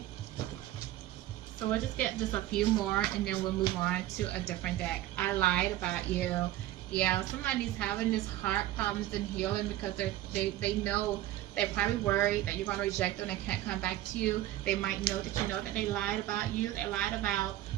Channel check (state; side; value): quieter; left; 14.5 dB